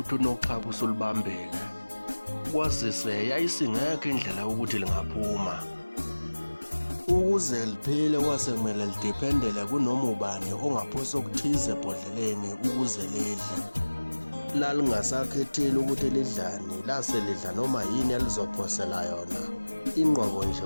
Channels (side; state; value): both; inverted; correlation -1.00